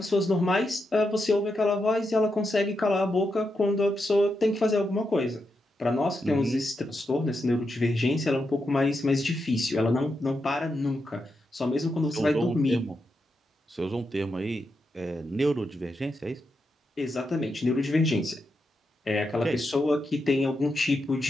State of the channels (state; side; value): normal; both; correlation 0.85